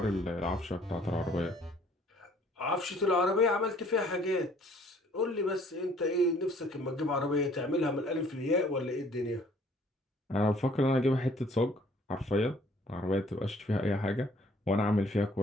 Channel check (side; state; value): both; normal; correlation 0.58